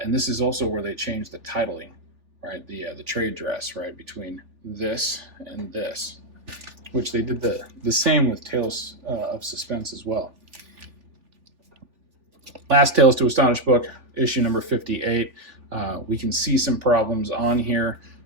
this is also where they changed the titling, right? The trade dress, right, between this and this, which they did the same with Tales of Suspense as well. Last Tales to Astonish book, issue number 58. We can see some problems on here,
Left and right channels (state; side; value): late; left; 3.4 ms